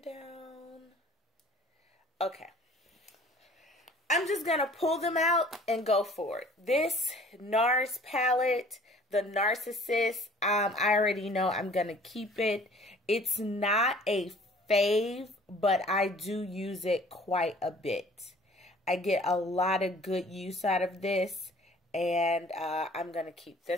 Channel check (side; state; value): both; normal; correlation 0.51